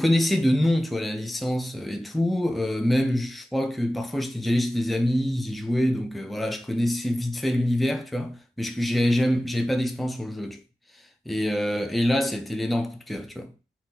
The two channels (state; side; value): normal; both; correlation 0.96